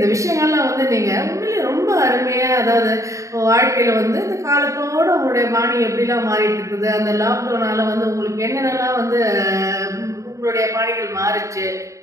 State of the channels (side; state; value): left; late; 0.15 ms